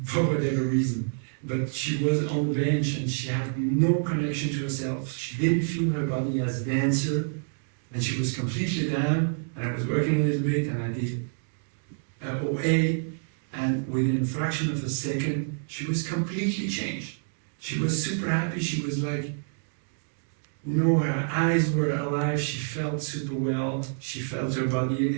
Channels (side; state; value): left; silent; digital silence